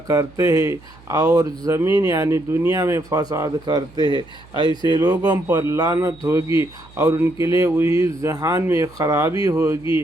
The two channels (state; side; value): noise; right; hum, 24 dB below the sound